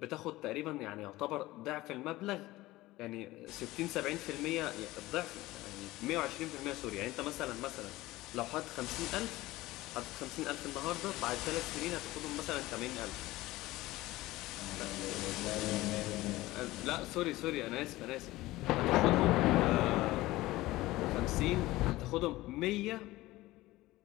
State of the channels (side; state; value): right; quieter; 18.1 dB